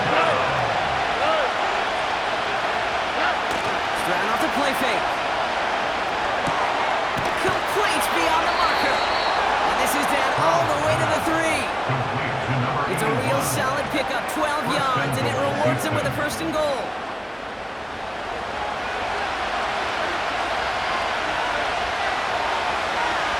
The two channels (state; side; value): identical; both; correlation 1.00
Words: Stroud off the play fake. Complete beyond the marker. And this is down all the way to the 3. It's a real solid pickup, 12 yards, and it rewards him with a first and goal.